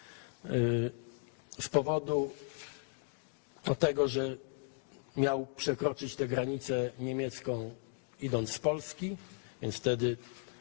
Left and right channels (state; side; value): silent; right; 54 dB below the other